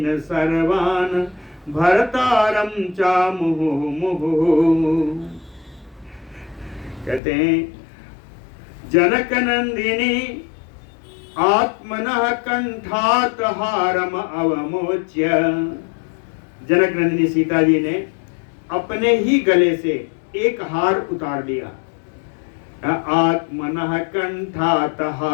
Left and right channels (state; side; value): drops out; right; at 7.2 s